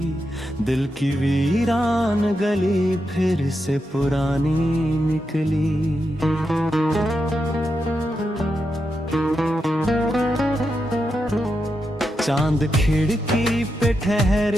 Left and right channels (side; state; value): both; normal; correlation 0.86